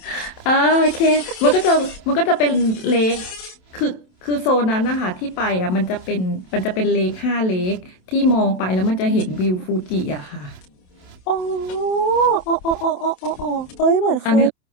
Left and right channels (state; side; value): late; right; 27 ms